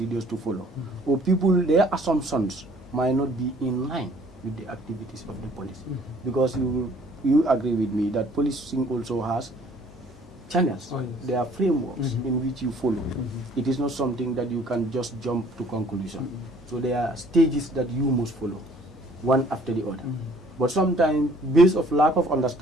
to follow, or their assumptions might not be in line with the activities of the police. Because you agree with me that policing also has channels. There are frameworks in which you follow. It is not something that you can just jump to conclusion. So there are stages that you must follow, one after the other. But sometimes, based of lack of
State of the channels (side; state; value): both; normal; correlation 0.57